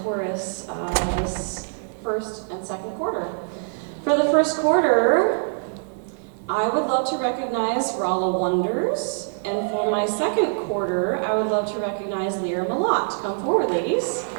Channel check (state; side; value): silent; left; digital silence